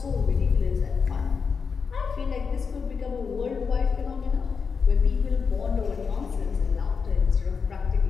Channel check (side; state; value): right; quieter; 5.6 dB